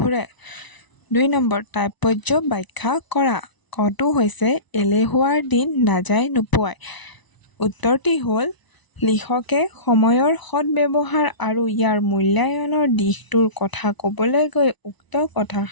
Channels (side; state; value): right; late; 1.0 ms